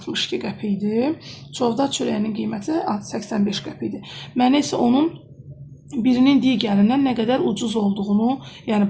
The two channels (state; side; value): identical; both; correlation 1.00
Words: qəpikdir. Çovdar çörəyinin qiyməti 85 qəpikdir. Mənə isə onun birinin digərindən nə qədər ucuz olduğunu, yəni